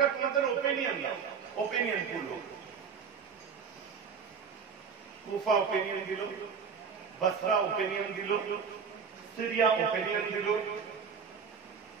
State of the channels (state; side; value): quieter; left; 6.2 dB